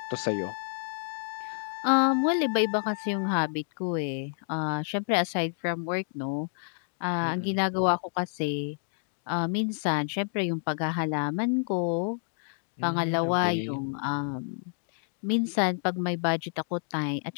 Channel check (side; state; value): right; silent; digital silence